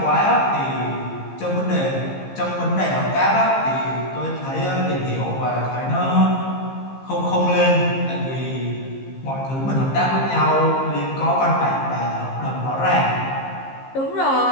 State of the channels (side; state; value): right; late; 15 ms